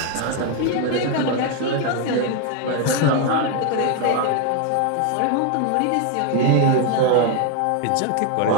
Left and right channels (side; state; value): both; different; correlation 0.01